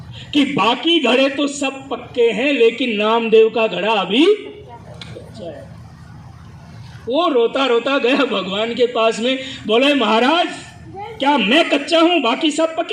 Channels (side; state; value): both; identical; correlation 1.00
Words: कि बाकी घड़े तो सब पक्के हैं, लेकिन नामदेव का घड़ा अभी कच्चा है। वो रोता रोता गया भगवान के पास में, बोले महाराज क्या मैं कच्चा हूं, बाकी सब